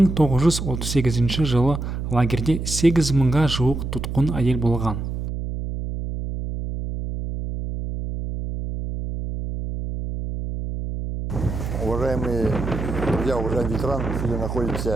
жылы лагерде 8 мыңға жуық тұтқын әйел болған. Уважаемые друзья, уважаемые ветераны, сегодня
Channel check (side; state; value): right; noise; hum, 5 dB below the sound